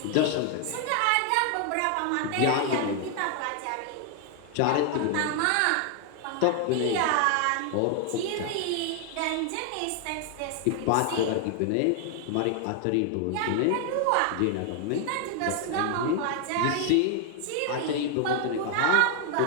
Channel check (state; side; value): different; both; correlation 0.00